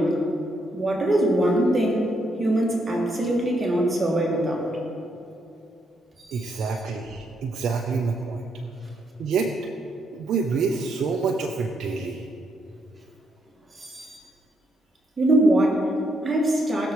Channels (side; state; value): both; normal; correlation 0.77